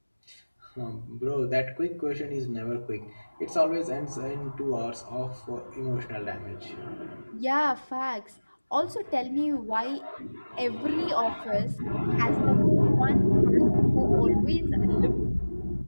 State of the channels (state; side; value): inverted; both; correlation -1.00